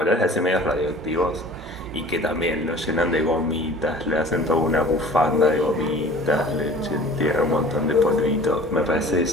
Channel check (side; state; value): both; normal; correlation 0.45